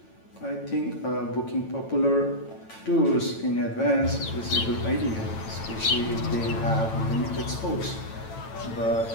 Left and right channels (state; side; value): late; right; 9.0 ms